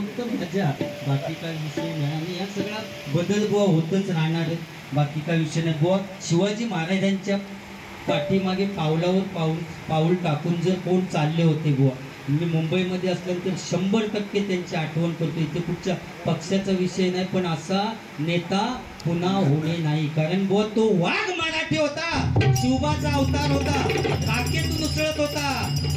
मजा, बाकी काय विषय नाही. आणि या सगळा बदल बुवा होतच राहणार आहे, बाकी काय विषय नाही बुवा. शिवाजी महाराजांच्या पाठीमागे पाऊल टाकून जर कोण चालले होते बुवा, मी मुंबईमध्ये असल्यानंतर 100% त्यांची आठवण करतो. इथे कुठच्या पक्षाचा विषय नाही, पण असा नेता पुन्हा होणे नाही. कारण बुवा तो वाघ मराठी होता, शिवबाचा अवतार होता, काकेतून उसळत होता,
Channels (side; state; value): both; identical; correlation 1.00